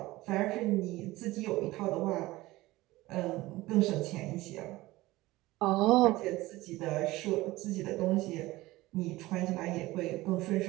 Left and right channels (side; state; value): left; quieter; 18.8 dB